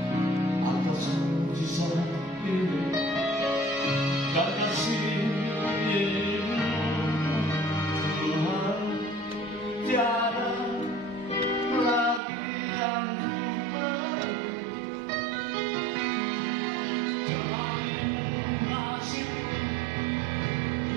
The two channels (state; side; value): drops out; left; at 12.2 s